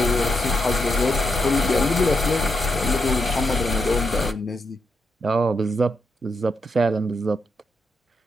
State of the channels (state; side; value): normal; both; correlation 0.82